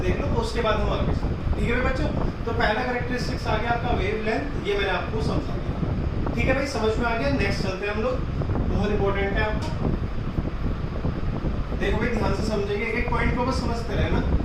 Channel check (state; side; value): identical; both; correlation 1.00